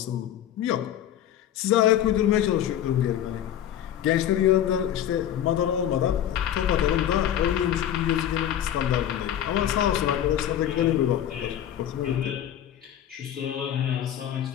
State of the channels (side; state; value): right; quieter; 10.8 dB